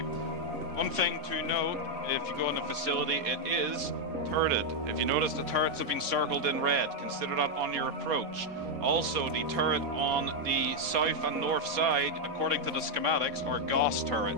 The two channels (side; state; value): left; late; 4.2 ms